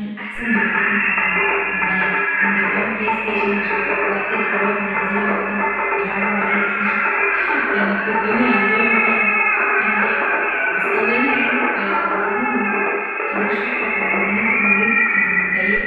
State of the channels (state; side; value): identical; both; correlation 1.00